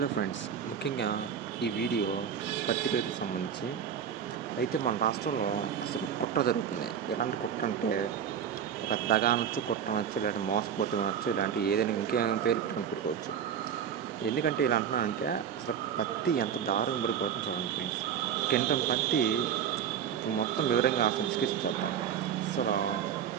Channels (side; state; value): left; quieter; 8.3 dB